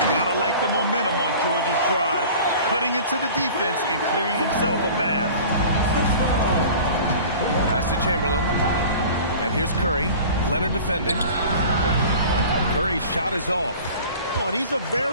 Gotta like the momentum on George's drive. Cutting into the defense and clearing himself a path. Pass to Chamberlain. And here's Curry. Leonard defending. Curry's shot is off. Oh, and he's a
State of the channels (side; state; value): both; inverted; correlation -0.41